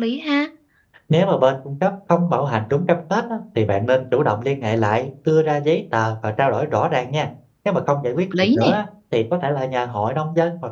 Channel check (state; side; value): identical; both; correlation 1.00